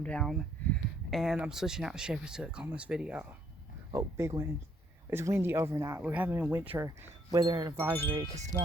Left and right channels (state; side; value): normal; both; correlation 0.68